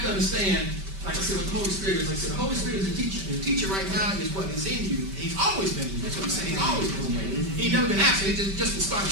to understand, like I said, what the Holy Spirit is. Like I said, the Holy Spirit is a teacher. And the teacher right now is what is in you. He's always been in you. That's what I'm saying. He's always been there. He's never been absent. It just started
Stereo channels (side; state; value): left; late; 5.1 ms